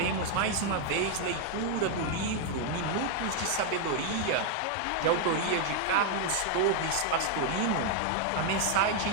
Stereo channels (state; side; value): different; both; correlation 0.00